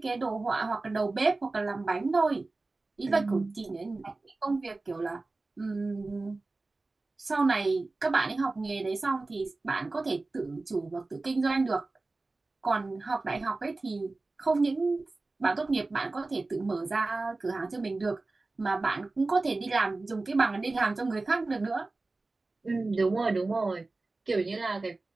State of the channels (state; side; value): quieter; left; 3.4 dB